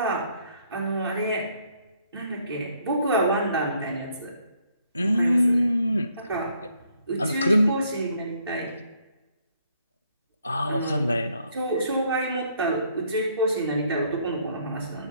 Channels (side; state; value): both; inverted; correlation -0.68